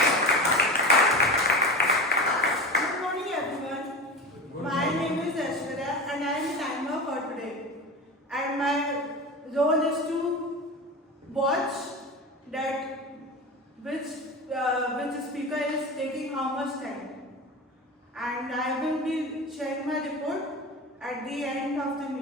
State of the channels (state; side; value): normal; both; correlation 0.28